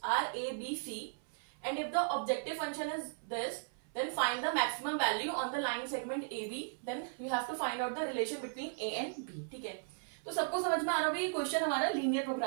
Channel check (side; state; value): left; silent; 53 dB below the other